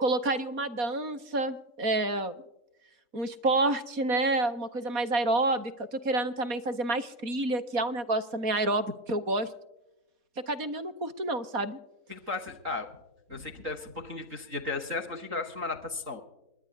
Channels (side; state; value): left; late; 4.2 ms